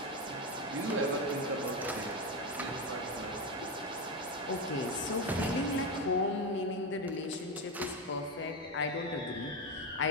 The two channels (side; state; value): both; normal; correlation 0.13